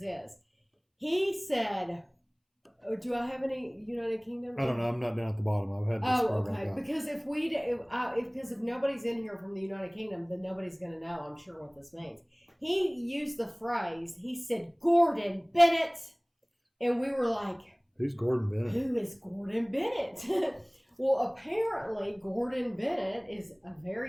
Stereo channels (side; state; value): both; identical; correlation 1.00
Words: He said, do I have any United Kingdom? I don't know. I'm not down at the bottom. I've had this okay. Because if nobody's in here from the United Kingdom, then nobody's going to know, I'm sure, what this means. He used the phrase, he said, Gordon Bennett. And we were like... Who's Gordon Bennett? Who is Gordon Bennett? Well, apparently, Gordon Bennett is a